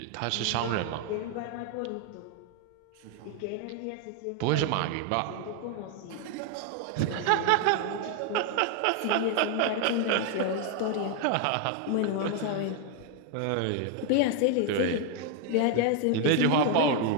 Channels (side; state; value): both; different; correlation 0.00